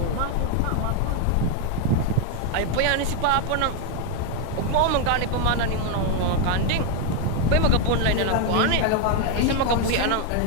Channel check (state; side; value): different; both; correlation 0.01